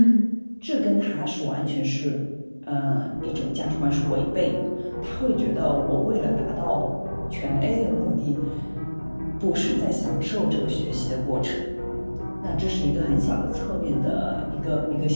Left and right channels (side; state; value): both; inverted; correlation -1.00